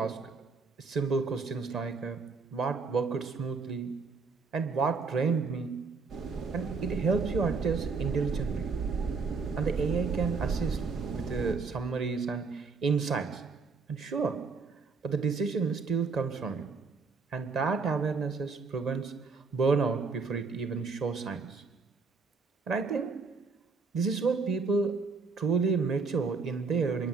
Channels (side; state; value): left; quieter; 4.6 dB